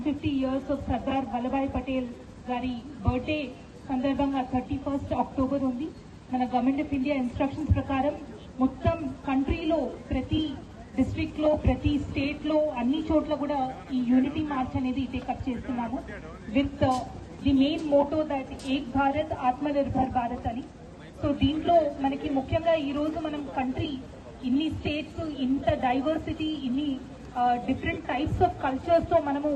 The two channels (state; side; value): identical; both; correlation 1.00